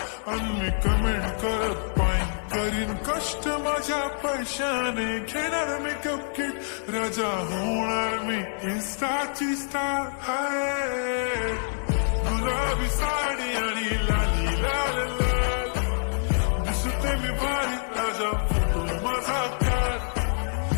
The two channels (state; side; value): silent; right; 57 dB below the other